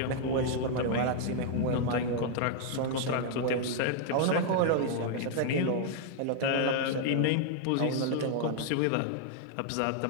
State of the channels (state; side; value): different; both; correlation 0.00